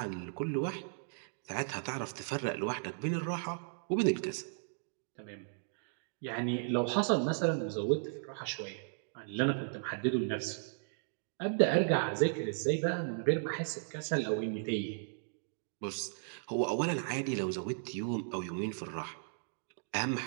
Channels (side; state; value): left; silent; digital silence